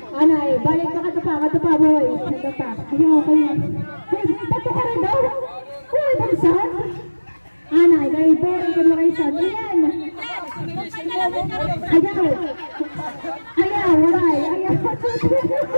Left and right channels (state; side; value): inverted; both; correlation -1.00